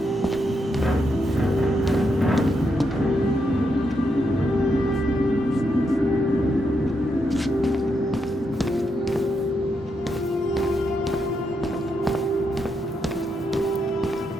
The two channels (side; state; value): both; normal; correlation 0.81